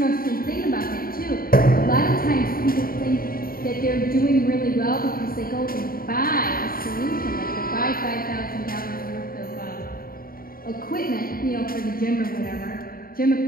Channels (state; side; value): late; right; 0.43 ms